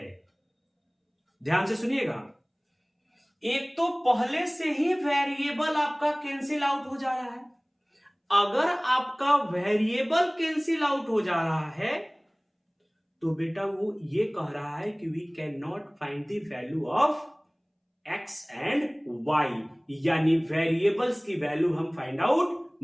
ध्यान से सुनिएगा, एक तो पहले से ही वेरिएबल आपका कैंसिल आउट हो जा रहा है। अगर आपका वेरिएबल कैंसिल आउट हो जा रहा है तो बेटा वो ये कह रहा है कि we can not find the value of x and y, यानी वेरिएबल्स की वैल्यू हम फाइंड आउट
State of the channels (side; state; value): both; identical; correlation 1.00